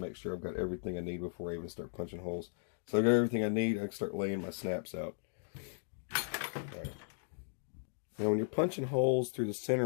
sure I've got everything I need before I even start punching holes. So I got everything I need. I can start laying my snaps out. Right. Now when you're punching holes through the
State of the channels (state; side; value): silent; right; digital silence